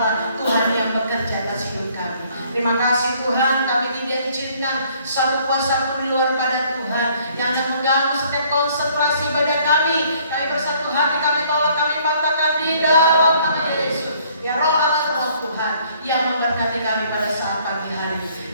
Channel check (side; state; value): both; inverted; correlation -0.61